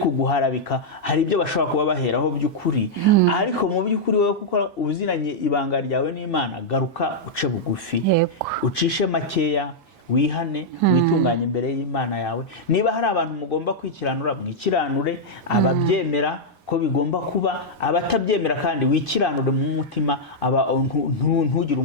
hari ibyo bashobora kuba baheraho by'ukuri, ariko mu by'ukuri wowe kuko uziranye ibanga ryawe n'Imana, garuka uce bugufi, ucishe makeya, wihane witunganye imbere y'Imana yawe. Niba hari abantu mugomba kwikiranura, mwikiranure, ababyemera ko bigomba kuba, abatabyemera kandi wikiranure mu mutima, ntugire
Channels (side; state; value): right; late; 1.1 ms